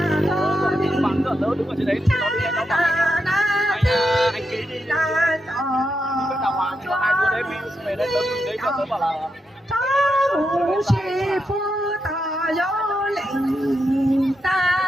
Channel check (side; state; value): both; normal; correlation 0.85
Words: ở trên đấy nó bảo anh ký đi cái đào hoàng cho hai đứa đấy về đấy đấy cho tớ bảo là 朝不是不大有铃铛，